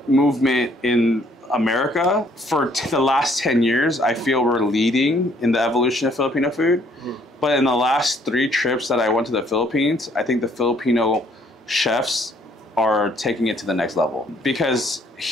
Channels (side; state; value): both; normal; correlation 0.64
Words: movement in America for the last 10 years, I feel we're leading in the evolution of Filipino food. But in the last 3 trips that I went to the Philippines, I think the Filipino chefs are taking it to the next level. Because